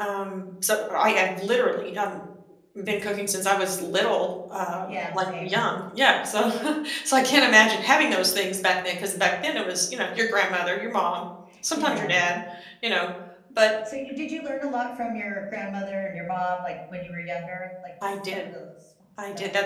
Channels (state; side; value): identical; both; correlation 1.00